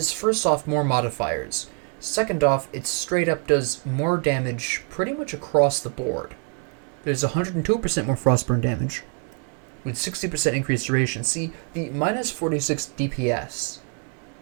first off, more modifiers. Second off, it straight up does more damage pretty much across the board. There's 102% more Frostburn damage, with 60% increased duration. See, the minus 46 DPS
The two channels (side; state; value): left; quieter; 36.5 dB